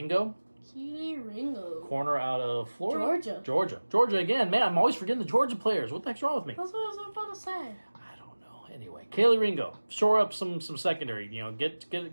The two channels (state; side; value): inverted; both; correlation -1.00